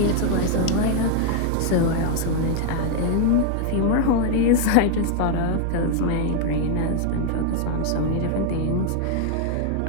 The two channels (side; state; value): both; different; correlation 0.00